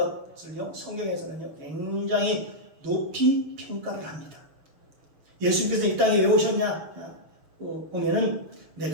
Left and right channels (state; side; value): late; left; 6.5 ms